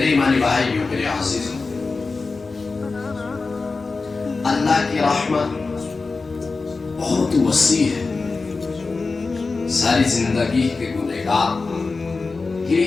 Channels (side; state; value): right; quieter; 4.0 dB